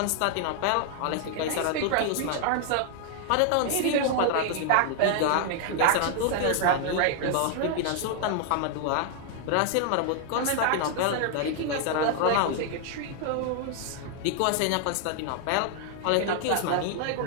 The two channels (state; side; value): different; both; correlation 0.00